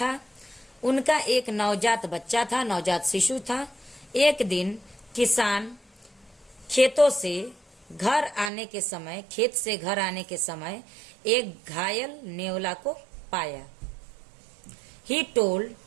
उनका एक नवजात बच्चा था, नवजात शिशु था। एक दिन किसान खेतों से घर आने के समय, खेत से घर आने के समय एक घायल नेवला को पाया। ही टोल्ड,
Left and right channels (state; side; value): drops out; left; at 8.5 s